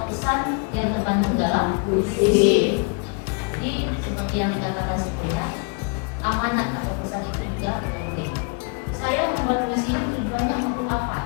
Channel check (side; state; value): right; quieter; 37.4 dB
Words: pesan yang terkandung dalam puisi. Jadi seperti yang dikatakan sebelumnya, amanat atau pesan itu juga penting. Saya membuat puisi tujuannya untuk